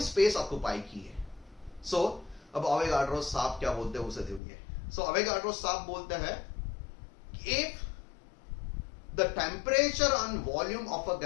स्पेस ऑक्यूपाई की है। सो अब अवेगाड्रो साहब क्या बोलते हैं उसे सुनिए। सो अवेगाड्रो साहब बोलते हैं कि if the temperature and volume of a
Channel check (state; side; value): drops out; right; at 4.4 s